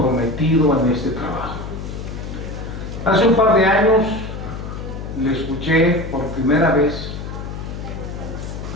en este trabajo. Hace un par de años le escuché por primera vez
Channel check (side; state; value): left; noise; hum, 8 dB below the sound